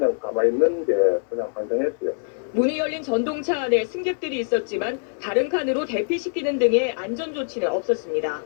가만히 있는 게 그냥 환장했어요. 문이 열린 전동차 안에 승객들이 있었지만 다른 칸으로 대피시키는 등의 안전조치는 없었습니다.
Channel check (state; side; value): silent; right; digital silence